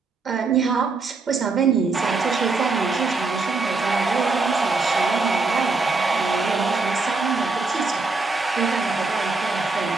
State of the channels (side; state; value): left; quieter; 3.9 dB